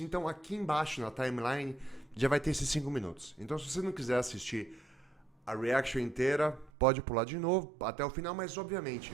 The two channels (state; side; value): drops out; left; at 6.7 s